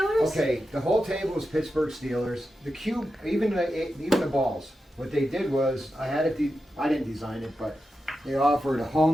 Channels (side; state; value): both; normal; correlation 0.90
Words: Okay, the whole table is Pittsburgh Steelers. The cube, even the balls. What they did was, I didn't design it, but they offered a